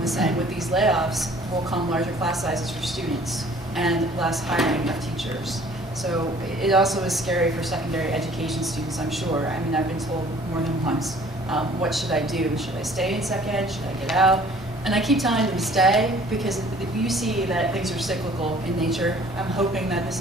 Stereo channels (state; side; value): normal; both; correlation 0.53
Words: saying, with these layoffs will come larger class sizes for students and less hiring of teachers. So it also is scary for secondary education students, I'm sure. I mean, I've been told more than once, what should I do? Should I stay in sec ed? Should I get out? And I keep telling them to stay because you see that things are cyclical in nature. I'm hoping that this